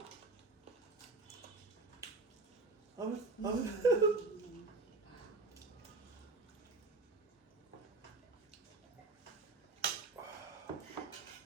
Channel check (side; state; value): left; quieter; 3.5 dB